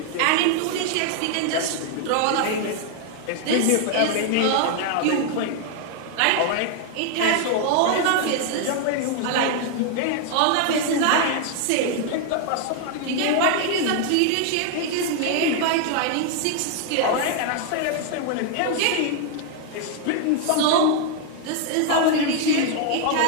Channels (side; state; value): both; different; correlation 0.00